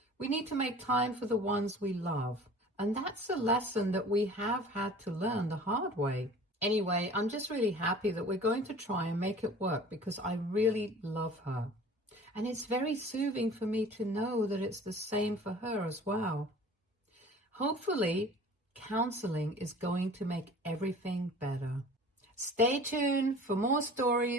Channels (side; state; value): both; normal; correlation 0.44